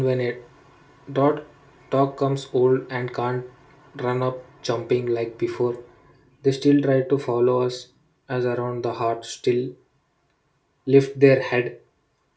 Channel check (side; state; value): both; identical; correlation 1.00